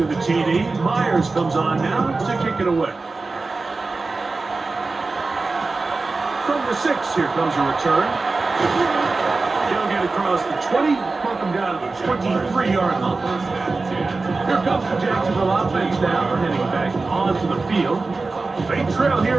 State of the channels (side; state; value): left; quieter; 3.8 dB